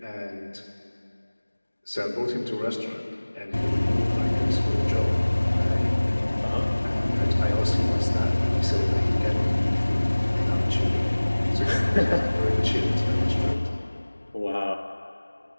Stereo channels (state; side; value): inverted; both; correlation -1.00